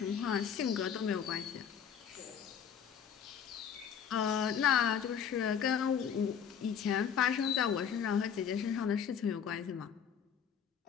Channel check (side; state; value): right; quieter; 7.8 dB